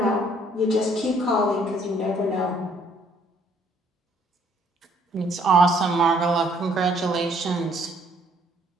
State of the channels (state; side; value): normal; both; correlation 0.64